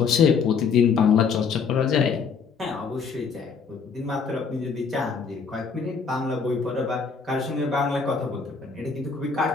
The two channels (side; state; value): right; quieter; 5.6 dB